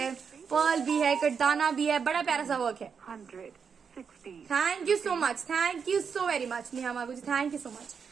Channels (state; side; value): quieter; left; 6.3 dB